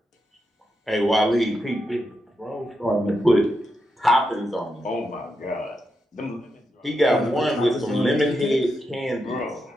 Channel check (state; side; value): normal; both; correlation 0.85